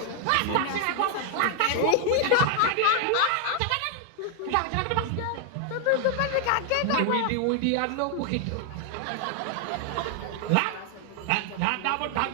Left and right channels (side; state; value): both; different; correlation 0.00